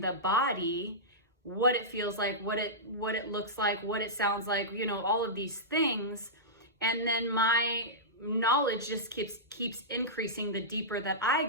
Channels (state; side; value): normal; both; correlation -0.14